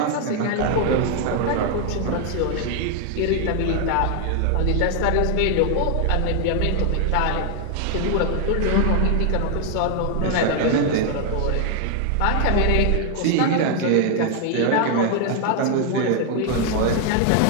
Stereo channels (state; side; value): different; both; correlation 0.00